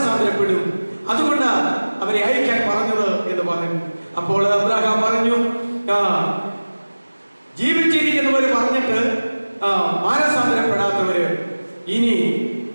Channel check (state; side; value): inverted; both; correlation -1.00